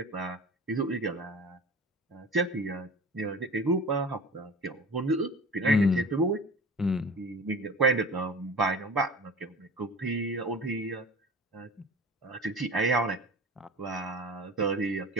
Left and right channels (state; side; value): normal; both; correlation 0.38